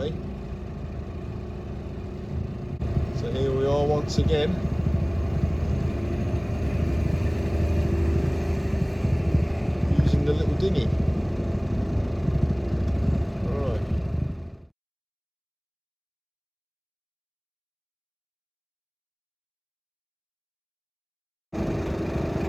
So here we are once again. Using the little dinghy. Alright.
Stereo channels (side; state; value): both; identical; correlation 1.00